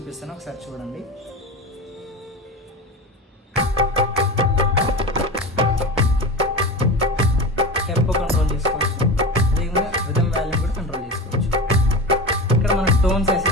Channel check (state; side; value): normal; both; correlation 0.26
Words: ఒకసారి చూడండి. టెంపో కంట్రోల్ చేసుకోవచ్చు, అదేవిధంగా రిథమ్ వాల్యూమ్ కూడా కంట్రోల్ చేసుకోవచ్చు. ఇక్కడ మనం టోన్స్